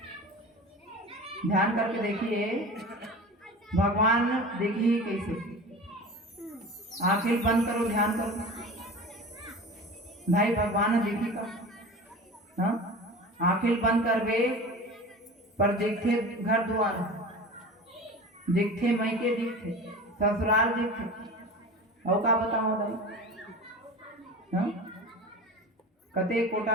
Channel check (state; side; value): normal; both; correlation 0.34